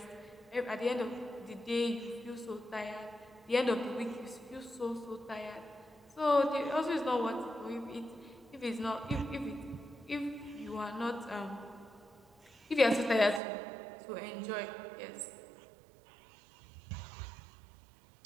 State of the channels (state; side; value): drops out; left; at 13.4 s